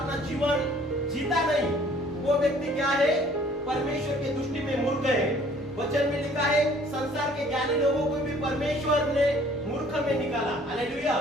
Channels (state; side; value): normal; both; correlation 0.56